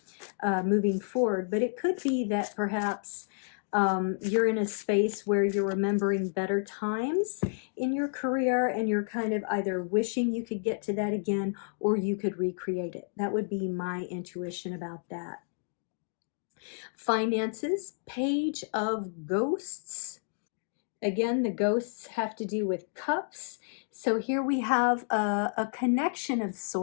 moving forward. But it could be that perhaps you're in a space where you're remembering better times in your career and you're kind of either wishing you could get to that again or you could recreate it. That would be my intuition about that. Finances, Page of Ghosts. Again, the ghosts have to do with cups. So here we have a connection of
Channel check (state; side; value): silent; right; digital silence